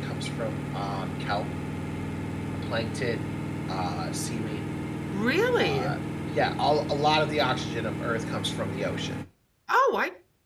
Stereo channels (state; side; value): identical; both; correlation 1.00